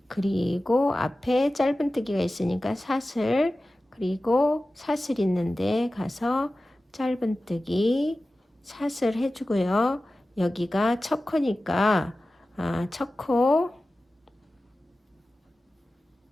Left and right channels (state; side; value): normal; both; correlation 0.95